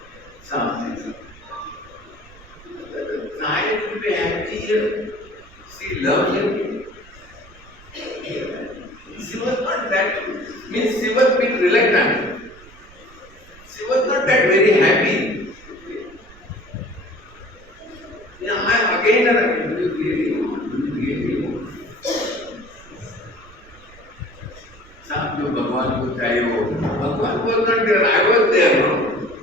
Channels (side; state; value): right; noise; rumble, 23 dB below the sound